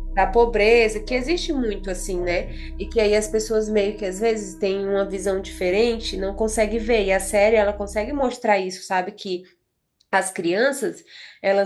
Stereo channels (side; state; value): both; identical; correlation 1.00